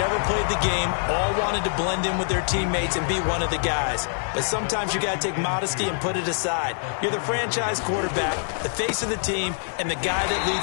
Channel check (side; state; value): right; silent; 56 dB below the other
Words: ever played the game all wanted to blend in with their teammates and be one of the guys. But sometimes you got to take modesty and put it aside. You're the franchise quarterback, the face of the team, and the guy that